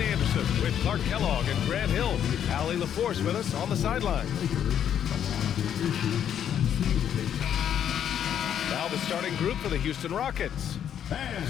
with Clark Kellogg and Grant Hill. Allie LaForce with us on the sideline. Now the starting group for the Houston Rockets.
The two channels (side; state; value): right; quieter; 9.4 dB